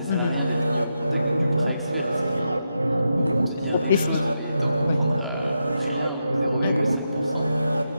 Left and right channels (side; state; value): both; inverted; correlation -0.85